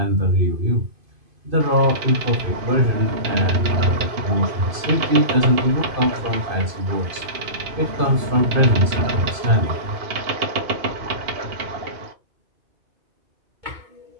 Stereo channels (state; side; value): late; left; 2.5 ms